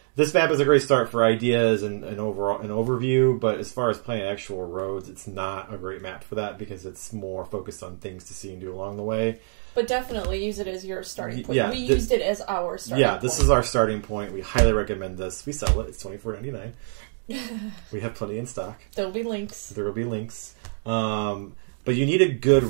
this map is a great start for ideas and overall an overview, but as far as planning actual roads, it's not a great map for that because it's more focused on things to see and do along the way. But definitely use it as your starting point. Yeah, we used it as our starting point. Yeah, this is our starting point. We highly recommend this. We sell it. It's $24.99. We have plenty in stock. There will be links. There will be links. But you need a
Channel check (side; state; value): left; silent; digital silence